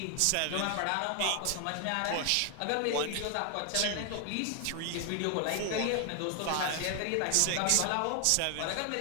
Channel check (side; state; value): both; different; correlation 0.00